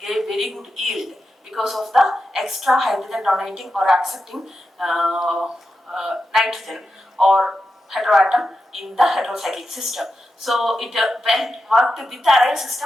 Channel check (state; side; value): normal; both; correlation 0.89